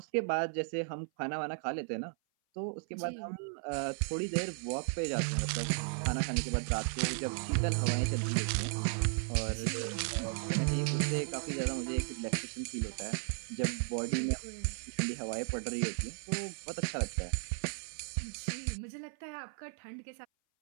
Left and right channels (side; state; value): left; silent; 54 dB below the other